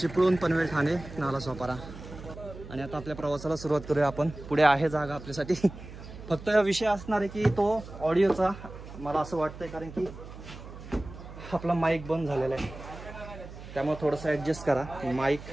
चिपळूण, पनवेल, ठाणे, नालासोपारा. आणि आता आपल्या प्रवासाला सुरुवात करूया आपण. पुढे आहे जागा आपल्यासाठी. फक्त विषय असणार आहे की तो ऑडिओचा, मला असं वाटतंय, कारण की आपला माईक बंद झालेला आहे, त्यामुळे थोडंसं ॲडजस्ट करा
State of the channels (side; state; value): right; noise; hum, 14 dB below the sound